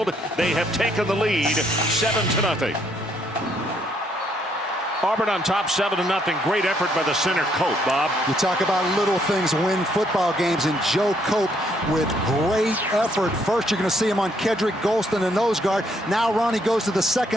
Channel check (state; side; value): normal; both; correlation 0.70